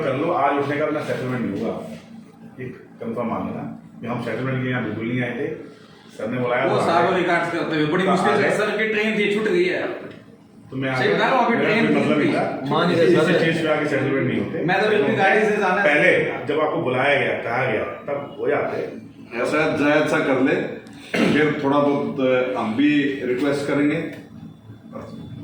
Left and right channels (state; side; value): identical; both; correlation 1.00